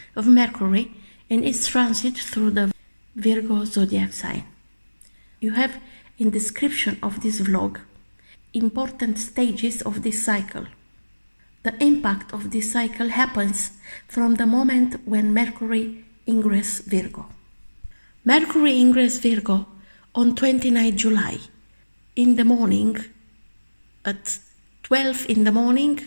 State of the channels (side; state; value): both; inverted; correlation -1.00